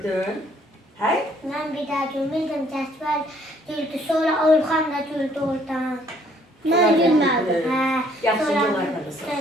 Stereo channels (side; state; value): both; normal; correlation 0.63